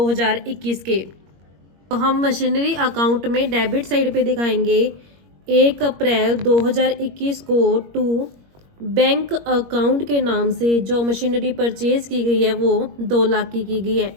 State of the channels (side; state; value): left; late; 21 ms